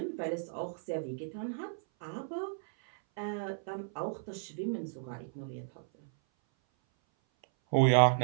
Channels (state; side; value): silent; left; 56 dB below the other